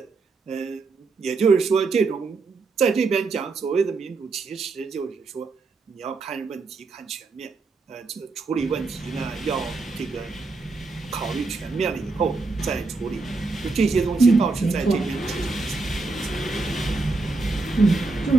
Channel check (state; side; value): quieter; left; 3.8 dB